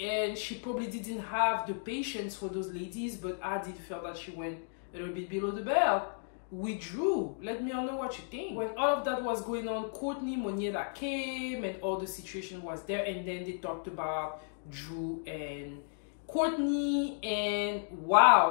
and she probably didn't have the patience for those ladies, but I did feel that she went a little bit below the belt with Drew. Let me know what you think. When all of that was going on, Courtney, Moniela came, and all the situation was there, and then they talked about Drew and Courtney, and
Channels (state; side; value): silent; right; digital silence